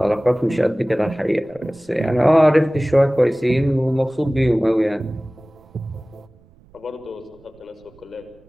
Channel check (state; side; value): noise; right; rumble, 29 dB below the sound